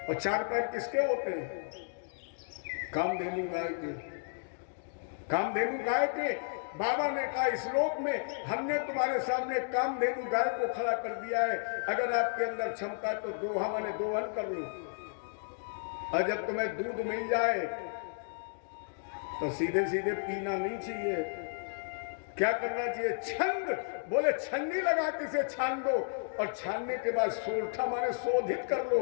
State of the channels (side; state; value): right; silent; digital silence